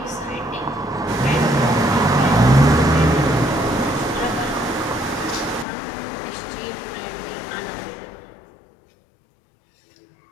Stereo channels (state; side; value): drops out; right; at 5.7 s